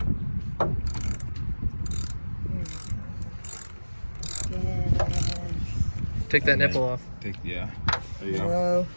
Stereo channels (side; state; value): both; inverted; correlation -1.00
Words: Take that nipple off. Yeah. There you go. Whoa.